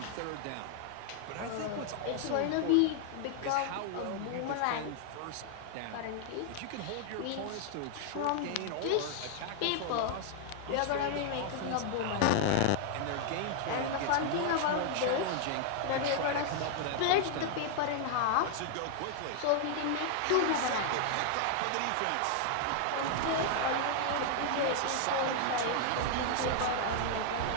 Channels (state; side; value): different; both; correlation 0.00